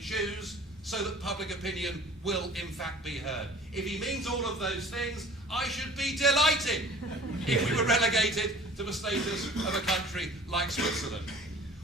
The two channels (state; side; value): normal; both; correlation 0.47